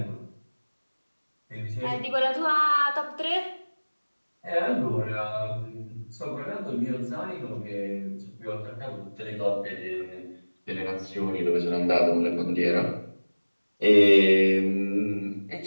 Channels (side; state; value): both; inverted; correlation -1.00